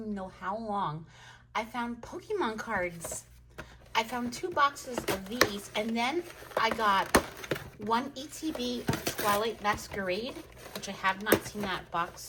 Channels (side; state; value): both; identical; correlation 1.00